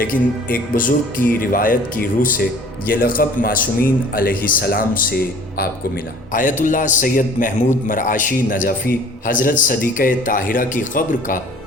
ایک بزرگ کی روایت کی روح سے یہ لقب معصومین علیہ السلام سے آپ کو ملا۔ آیت اللہ سید محمود مرعاشی نجفی حضرت صدیقہ طاہرہ کی قبر کا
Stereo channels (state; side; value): normal; both; correlation 0.50